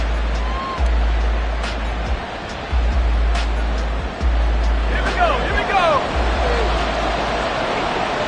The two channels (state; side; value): identical; both; correlation 1.00